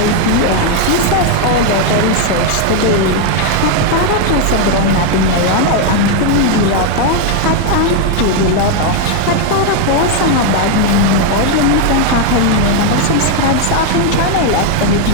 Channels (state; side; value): different; both; correlation 0.01